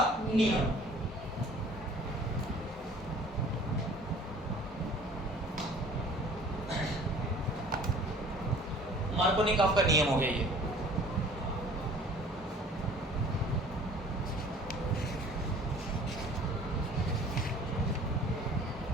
नियम। मार्कोनिकॉफ का नियम हो गया ये।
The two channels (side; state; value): both; normal; correlation 0.50